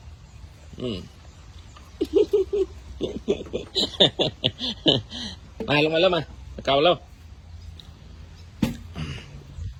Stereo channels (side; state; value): both; identical; correlation 1.00